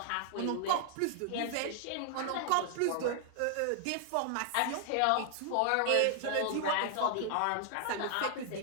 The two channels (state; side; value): different; both; correlation 0.00